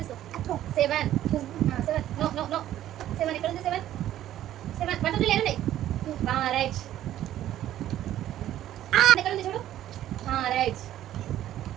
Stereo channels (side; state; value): left; quieter; 12.6 dB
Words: తీసుకో seven seven no no no seven ఎక్కడ ఉంది seven seven one two three లేదండి రైట్ ఎక్కడ ఉంది చూడు రైట్